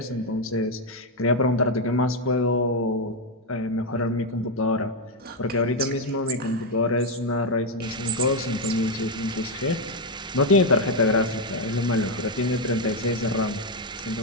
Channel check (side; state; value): both; normal; correlation 0.04